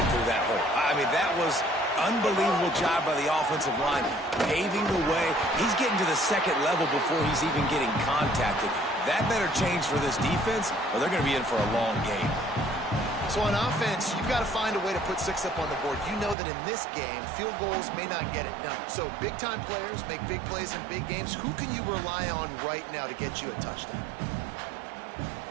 through that hole. I mean, that was unbelievable job by the offensive line, paving the way. He's getting to the second level before he's even getting contacted. That better change for this defense, or they're going to be in for a long game. So on offense, you've got to find a way to put 6 up on the board. You know that in this game, field goals may not get it done. So big-time players make big plays in big games. Who can you rely on right now to get you a touchdown?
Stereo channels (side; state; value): left; drops out; at 16.4 s